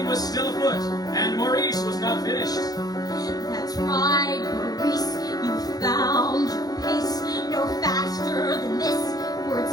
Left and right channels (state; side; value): late; right; 0.19 ms